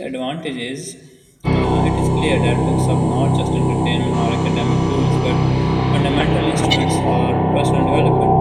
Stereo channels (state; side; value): identical; both; correlation 1.00